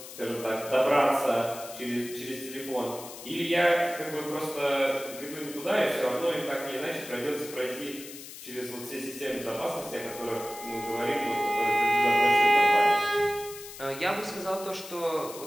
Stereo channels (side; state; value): left; noise; hiss, 13 dB below the sound